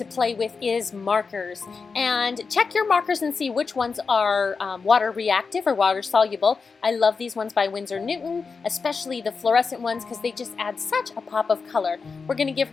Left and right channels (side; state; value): right; quieter; 4.9 dB